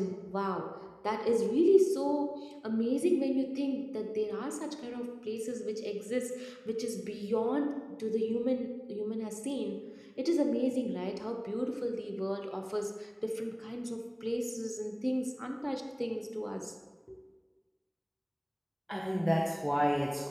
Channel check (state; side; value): identical; both; correlation 1.00